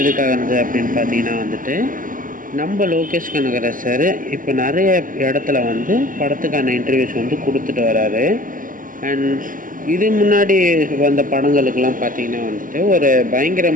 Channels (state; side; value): late; left; 0.39 ms